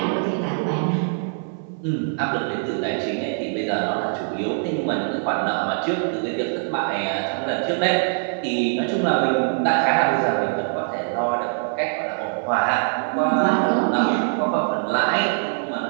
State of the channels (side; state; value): left; silent; 64 dB below the other